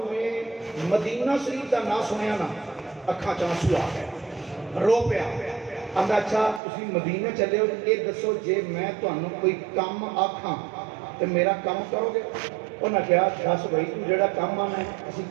میں مدینہ شریف کا نام سنیا نا اکھاں چ آنسو آ گئے رو پیا ਆਂਦਾ ਅੱਛਾ ਤੁਸੀਂ ਮਦੀਨੇ ਚੱਲੇ ਹੋ, ਇਹ ਦੱਸੋ ਜੇ ਮੈਂ ਤੁਹਾਨੂੰ ਕੋਈ ਕੰਮ ਆਖਾਂ ਤੇ ਮੇਰਾ ਕੰਮ ਕਰੋਗੇ? ਉਹਨਾਂ ਕਿਹਾ ਦੱਸ ਬਈ ਤੂੰ ਜਿਹੜਾ ਕੰਮ ਆਣਾ ਅਸੀਂ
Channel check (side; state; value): left; drops out; at 6.6 s